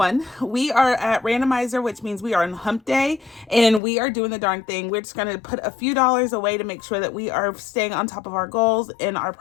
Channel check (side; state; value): right; drops out; at 3.8 s